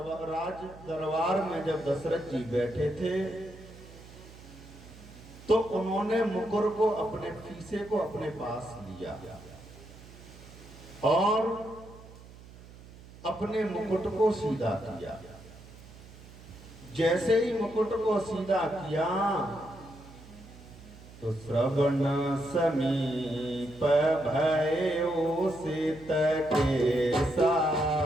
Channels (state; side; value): noise; right; hum, 19 dB below the sound